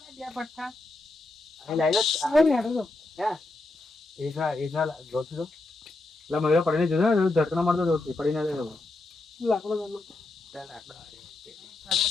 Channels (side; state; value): right; quieter; 3.0 dB